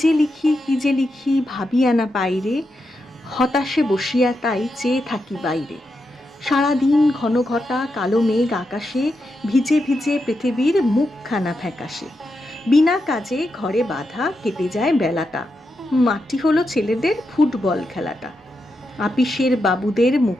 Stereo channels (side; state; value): both; normal; correlation 0.86